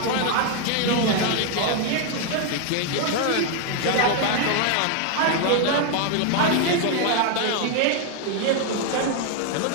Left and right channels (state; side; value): different; both; correlation 0.00